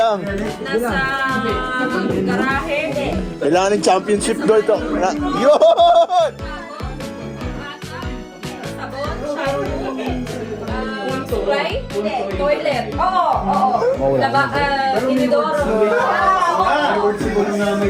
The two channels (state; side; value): identical; both; correlation 1.00